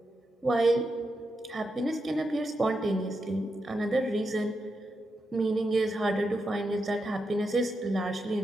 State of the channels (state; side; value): normal; both; correlation 0.86